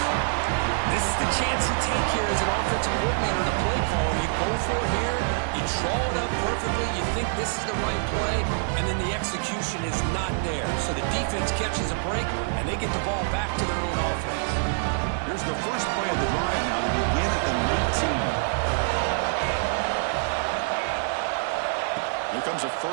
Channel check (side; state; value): left; silent; 61 dB below the other